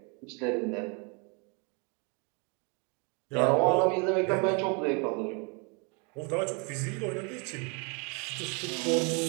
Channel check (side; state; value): left; quieter; 33.7 dB